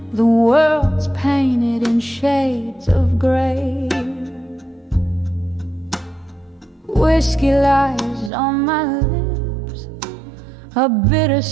the world's painted in shades of gray. Whiskey lies on my lips, a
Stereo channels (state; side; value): drops out; left; at 8.3 s